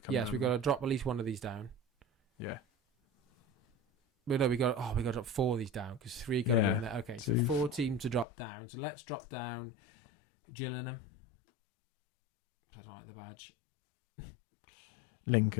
come. Yes, we've got to drop at least one of these down. Yeah. But no, we got to drop 4 of these down because 3 got to go in there. Okay, so 4 teams to drop down. So let's drop down Gillingham. I don't like the badge.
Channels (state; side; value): drops out; right; at 8.2 s